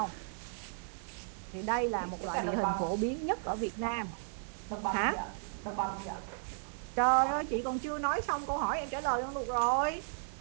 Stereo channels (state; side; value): silent; left; 55 dB below the other